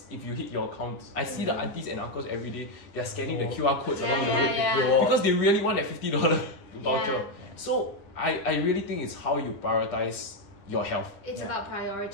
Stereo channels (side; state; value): right; late; 10 ms